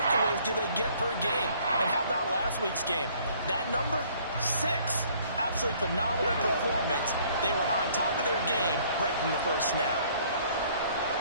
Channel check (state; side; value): inverted; both; correlation -0.59